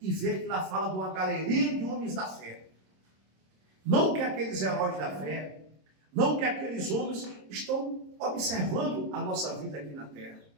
e ver que lá fala de uma galeria de homens da fé. Não que aqueles heróis da fé, não que aqueles homens estão observando a nossa vida aqui na terra,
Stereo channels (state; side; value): late; left; 26 ms